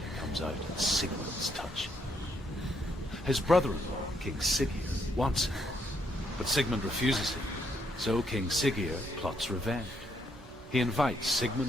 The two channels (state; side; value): normal; both; correlation 0.74